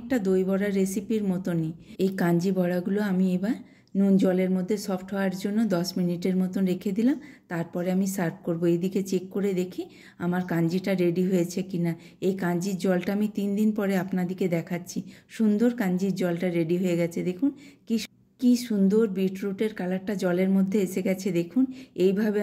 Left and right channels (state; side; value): identical; both; correlation 1.00